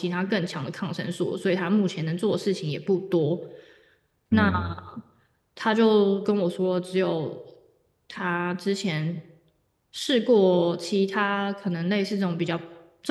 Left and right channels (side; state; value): both; identical; correlation 1.00